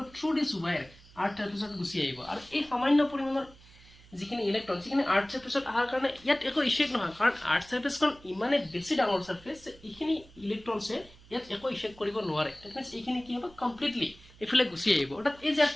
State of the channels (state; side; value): noise; right; hum, 24 dB below the sound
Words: থ্ৰু দিস ওয়্যাৰ আৰ্থ সাৰফেসত গুচি আহিব আৰু এই সামান্য পৰিমাণৰ যিখিনি ইলেক্ট্ৰন যিখিনি আৰ্থ সাৰফেসত আহাৰ কাৰণে ইয়াত একো ইফেক্ট নহয় কাৰণ আৰ্থ সাৰফেসখন ইমানে বেছি ডাঙৰ সাৰফেস এইখিনি ইলেক্ট্ৰনছে ইয়াত একো ইফেক্ট কৰিব নোৱাৰে দ্যাট মিন্স এইখিনি কি হ'ব কমপ্লিটলি এফালে গুচি আহিব অৰ্থাৎ এই